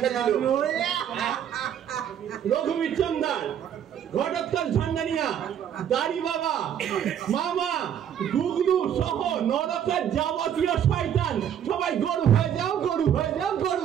দিল রঘুবীর চন্দার, ঘটোৎকচ ঝান্ডানিয়া, দাড়ি বাবা, মামা, গুগলু সহ নরকের যাবতীয় শয়তান সবাই গরু হয়ে যাও, গরু হয়ে যাও, গরু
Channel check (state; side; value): quieter; left; 9.3 dB